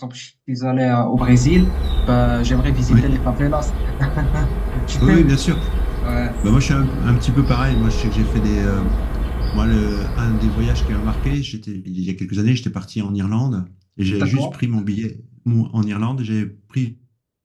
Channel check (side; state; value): both; identical; correlation 1.00